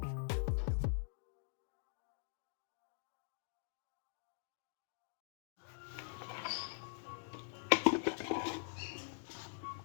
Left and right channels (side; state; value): right; silent; digital silence